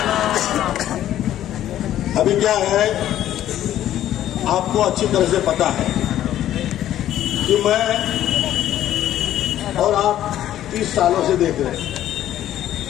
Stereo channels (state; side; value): quieter; right; 12.3 dB